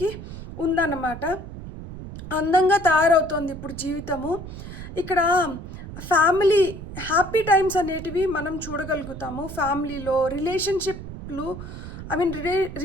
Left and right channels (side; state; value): right; noise; rumble, 11 dB below the sound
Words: ఉందన్నమాట. అందంగా తయారవుతోంది ఇప్పుడు జీవితము. ఇక్కడ ఫ్యామిలీ హ్యాపీ టైమ్స్ అనేటివి మనం చూడగలుగుతాము. ఫ్యామిలీలో